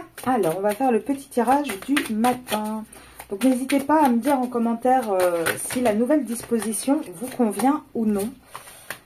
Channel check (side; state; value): both; identical; correlation 1.00